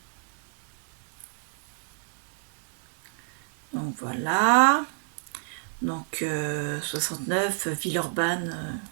Donc, voilà. Donc, 69, Villeurbanne.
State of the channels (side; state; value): left; silent; 56 dB below the other